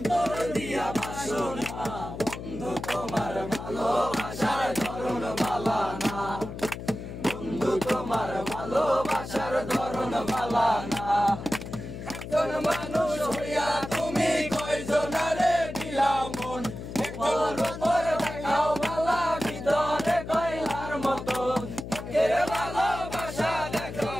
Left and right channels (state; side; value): noise; left; hum, 9 dB below the sound